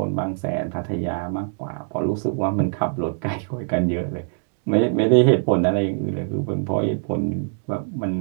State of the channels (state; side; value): silent; left; digital silence